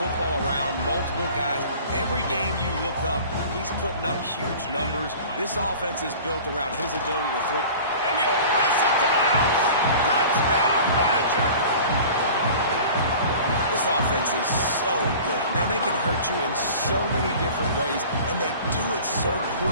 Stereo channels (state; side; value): inverted; both; correlation -0.42